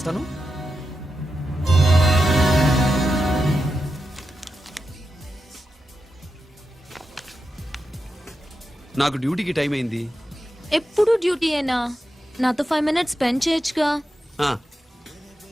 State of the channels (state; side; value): normal; both; correlation 0.88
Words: నాకు డ్యూటీకి టైం అయింది. ఎప్పుడు డ్యూటీయేనా? నాతో 5 minutes స్పెండ్ చేయొచ్చుగా. ఆ,